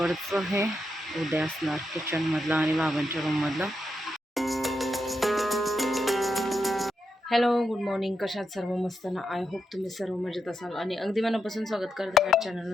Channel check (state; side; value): normal; both; correlation 0.84